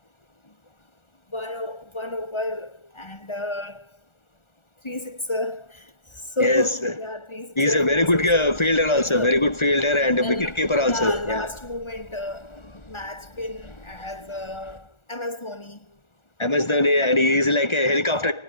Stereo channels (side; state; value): right; late; 1.4 ms